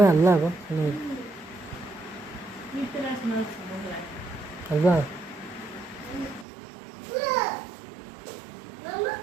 हाल्ला अब हल्ला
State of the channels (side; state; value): left; drops out; at 6.5 s